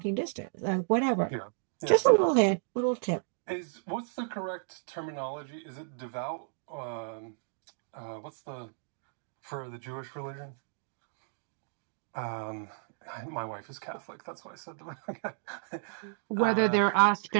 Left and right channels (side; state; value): left; silent; digital silence